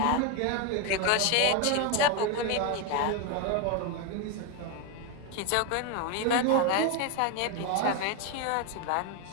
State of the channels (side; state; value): both; different; correlation 0.02